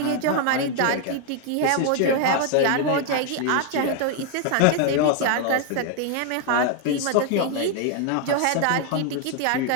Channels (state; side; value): different; both; correlation 0.00